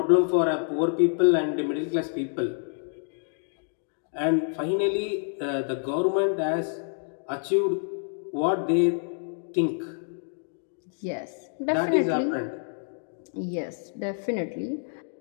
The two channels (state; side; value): silent; right; digital silence